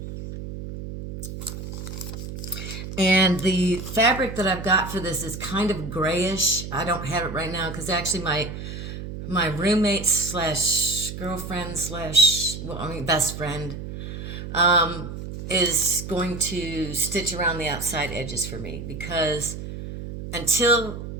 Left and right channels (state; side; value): noise; right; hum, 8 dB below the sound